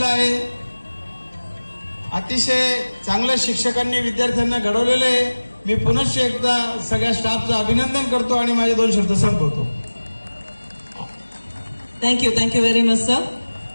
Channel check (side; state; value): both; inverted; correlation -1.00